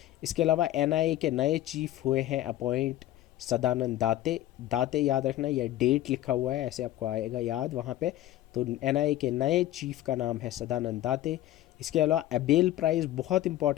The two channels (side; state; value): right; quieter; 14.0 dB